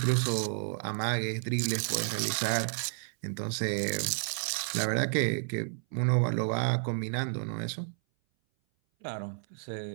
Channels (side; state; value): left; silent; 57 dB below the other